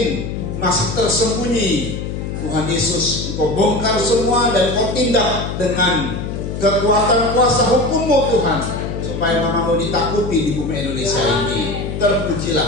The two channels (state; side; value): noise; left; hum, 5 dB below the sound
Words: masih tersembunyi. Tuhan Yesus, Engkau bongkar semua dan Engkau tindak dengan kekuatan kuasa hukum-Mu Tuhan, supaya nama-Mu ditakuti di bumi Indonesia ini.